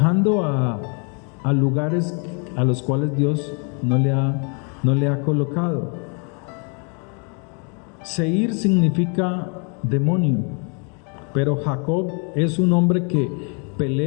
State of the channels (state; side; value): quieter; right; 37.0 dB